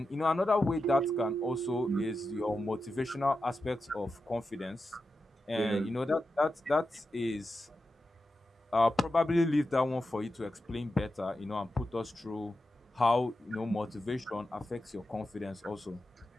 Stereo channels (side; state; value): both; normal; correlation 0.90